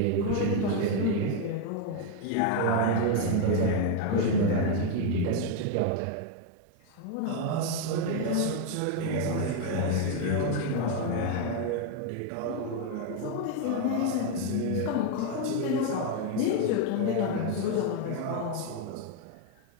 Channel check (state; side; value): different; both; correlation 0.01